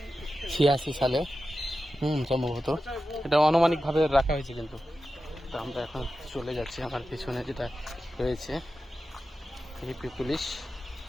সালে সম্ভবত। এটা আনুমানিকভাবে রাখা হয়েছে কিন্তু। তো আমরা এখন চলে যাচ্ছি, আমার পিছনে যেটা রয়েছে ইউপি পুলিশ,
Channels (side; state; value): both; normal; correlation 0.92